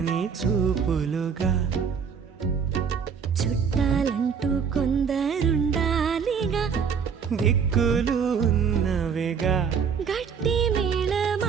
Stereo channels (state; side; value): quieter; left; 6.6 dB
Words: చూపులుగా చుట్టాలంటూ కొందరుండాలిగా దిక్కులు ఉన్నవిగా గట్టి